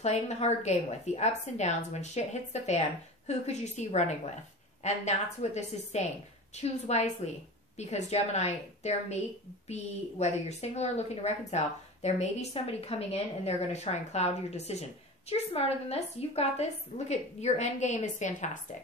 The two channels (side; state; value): both; normal; correlation 0.32